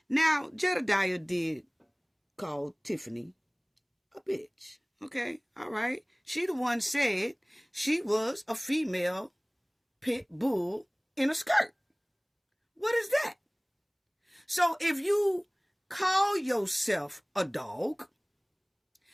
Now, Jedediah did call Tiffany a bitch. Okay, all right. She the one said she was a female pit bull in a skirt. What is that? So if you call yourself a dog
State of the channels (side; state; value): both; identical; correlation 1.00